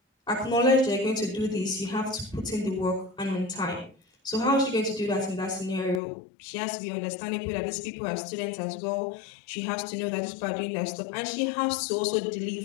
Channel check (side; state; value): right; drops out; at 6.0 s